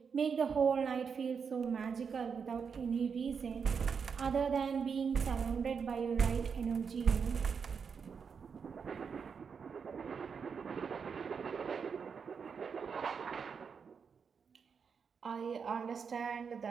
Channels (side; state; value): left; quieter; 6.2 dB